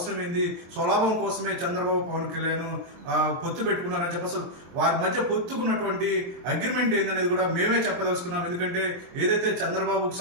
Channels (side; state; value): left; late; 23 ms